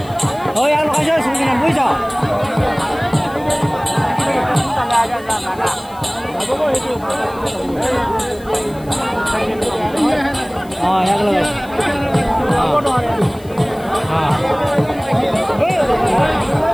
ওই আর লগাইছো শুনি না বুঝছো হ্যাঁ এক লগাই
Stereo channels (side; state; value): left; noise; hiss, 24 dB below the sound